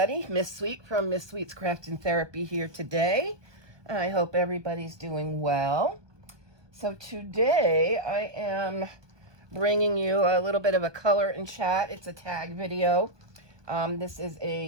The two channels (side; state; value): left; late; 1.2 ms